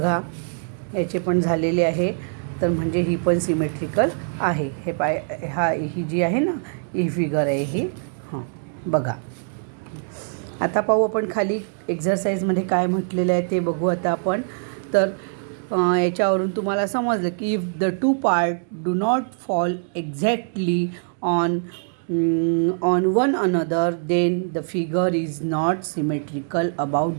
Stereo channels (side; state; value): left; silent; digital silence